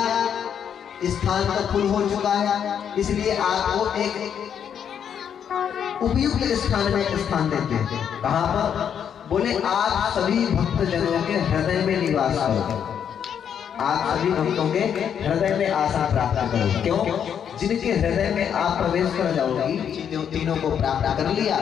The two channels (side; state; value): right; quieter; 8.3 dB